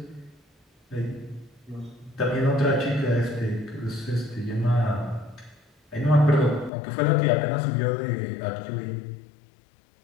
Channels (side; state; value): right; drops out; at 6.7 s